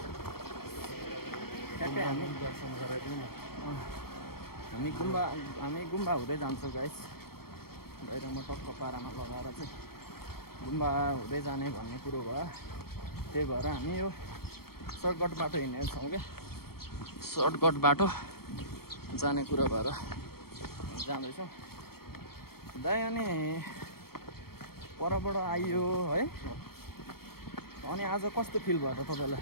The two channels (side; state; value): right; late; 0.94 ms